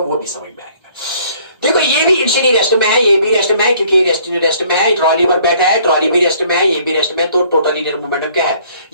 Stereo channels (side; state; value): both; inverted; correlation -0.59